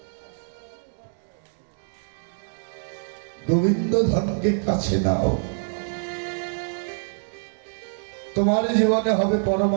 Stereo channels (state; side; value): silent; left; digital silence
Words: গোবিন্দ ধনকে কাছে নাও, তোমার জীবনে হবে